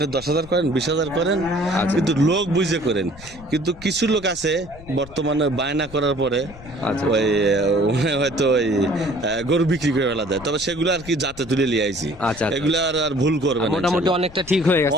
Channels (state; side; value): noise; left; rumble, 18 dB below the sound